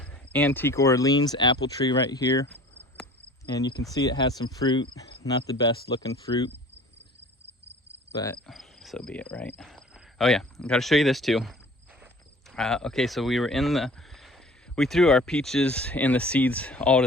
Antique Orleans apple tree right here. And you can see it has some fruit. Not the best looking fruit, but so be it, right? Oh yeah, I gotta show you this too. Okay, so we threw our peaches and the seeds all to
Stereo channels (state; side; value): normal; both; correlation 0.46